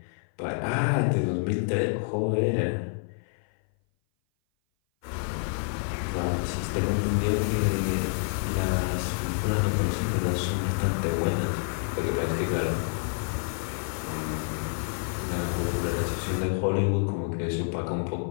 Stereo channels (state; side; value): silent; right; 57 dB below the other